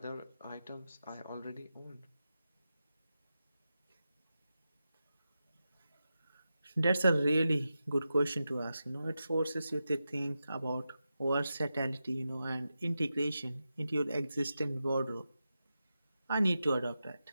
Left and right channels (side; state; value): both; inverted; correlation -0.90